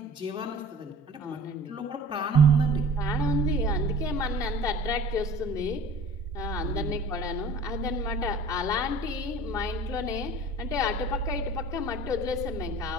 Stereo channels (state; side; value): normal; both; correlation 0.43